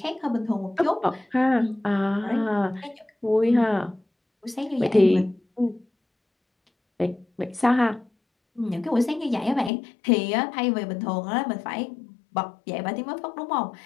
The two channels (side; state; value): right; drops out; at 9.7 s